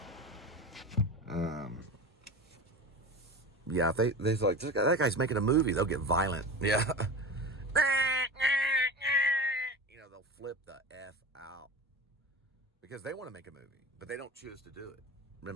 Yeah, if they're like, "That guy's making a movie," they'll get violent. Yeah. You know, they'll flip the F out. Because they want to make a movie, but they don't choose to do it.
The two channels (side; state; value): both; normal; correlation 0.29